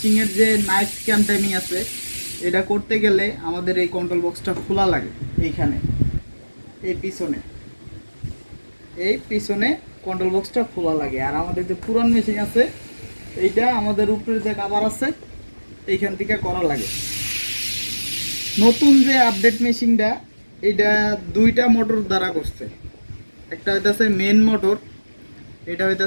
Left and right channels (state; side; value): inverted; both; correlation -1.00